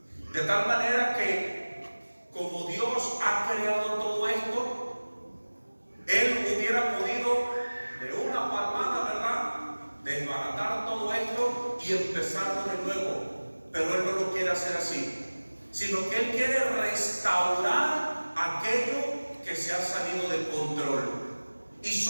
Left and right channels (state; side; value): inverted; both; correlation -1.00